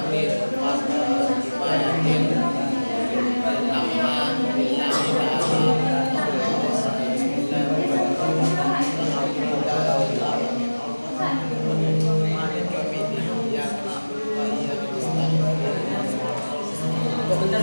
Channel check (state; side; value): inverted; both; correlation -1.00